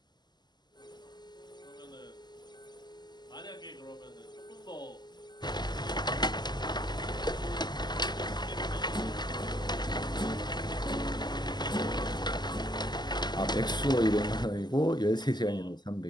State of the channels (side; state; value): right; late; 0.21 ms